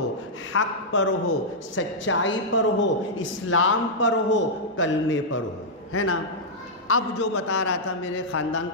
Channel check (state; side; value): normal; both; correlation -0.08